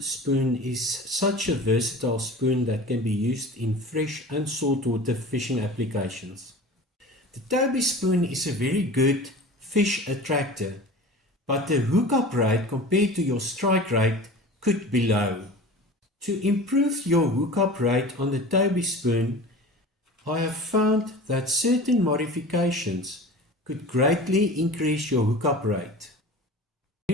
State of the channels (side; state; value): both; normal; correlation 0.37